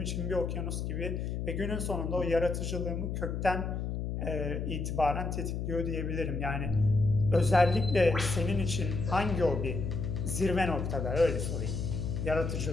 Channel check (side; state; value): left; noise; hum, 3 dB below the sound